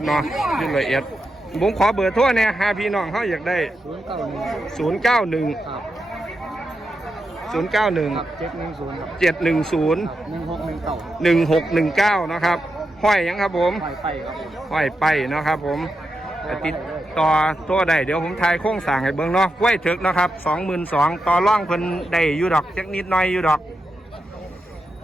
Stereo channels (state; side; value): normal; both; correlation 0.87